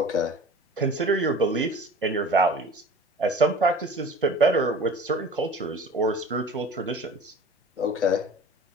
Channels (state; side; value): normal; both; correlation 0.41